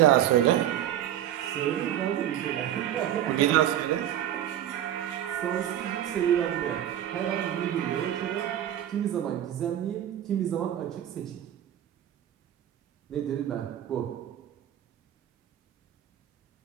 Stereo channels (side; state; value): left; quieter; 11.4 dB